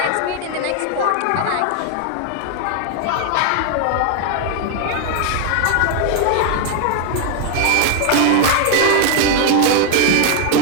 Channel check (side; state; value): both; different; correlation 0.00